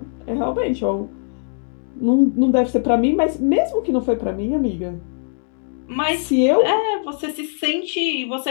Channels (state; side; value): silent; right; digital silence